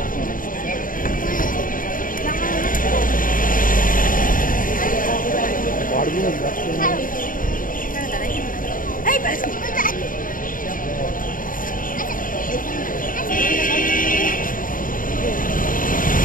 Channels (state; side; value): late; right; 0.40 ms